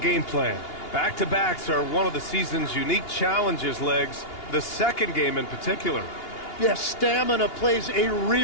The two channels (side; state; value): right; late; 2.8 ms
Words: plan. Back-to-backs are one of the season's unique challenges, Legs. The second game in particular. Yes, stamina plays a